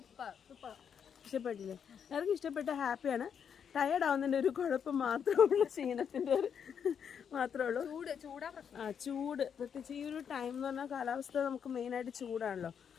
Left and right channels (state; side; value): quieter; right; 7.6 dB